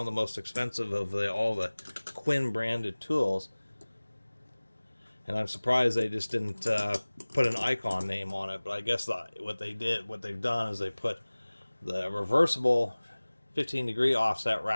the most expensive of all the Quinn branded tools. And I'm surprised they just didn't put an icon name on it. But I guess what they've done is they put the reversible 15-degree offset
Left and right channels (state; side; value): inverted; both; correlation -1.00